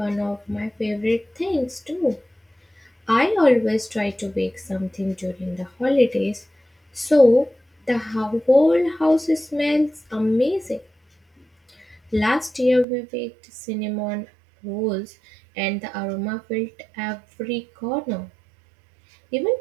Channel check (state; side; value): drops out; left; at 12.9 s